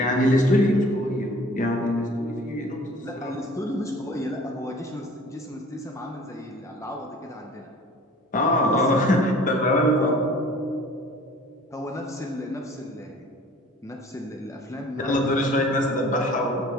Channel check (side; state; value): both; normal; correlation 0.49